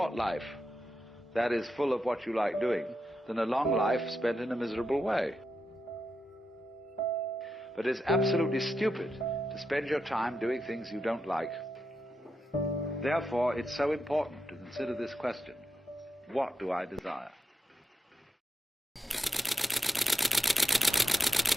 life that is full of what you like doing than a long life spent in a miserable way. But it's absolutely stupid to spend your time doing things you don't like. Therefore, it's so important to consider this question: what do I desire?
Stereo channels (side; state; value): both; normal; correlation 0.87